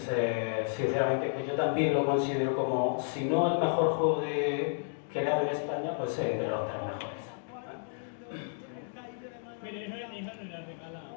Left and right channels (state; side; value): silent; right; digital silence